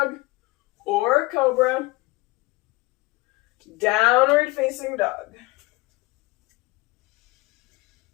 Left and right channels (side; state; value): right; quieter; 22.1 dB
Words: or cobra. Downward facing dog.